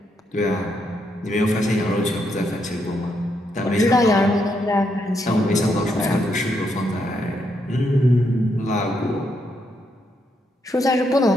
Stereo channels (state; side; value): normal; both; correlation 0.78